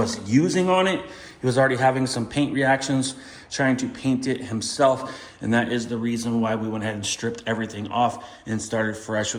using on it. He was already having some paint reactions trying to paint it himself, and that is the reason why we went ahead and stripped everything off and started fresh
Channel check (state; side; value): identical; both; correlation 1.00